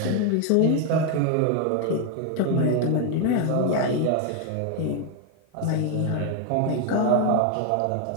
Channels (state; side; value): different; both; correlation 0.01